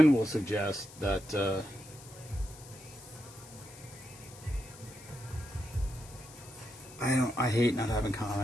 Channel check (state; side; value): noise; left; hiss, 19 dB below the sound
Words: will suggest that I hate not having